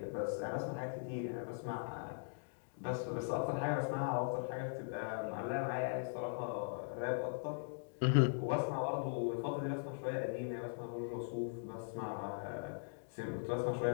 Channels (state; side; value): silent; right; digital silence